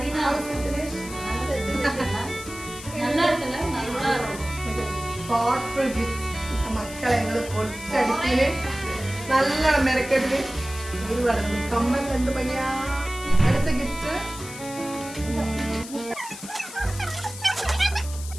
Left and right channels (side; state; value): left; noise; hiss, 13 dB below the sound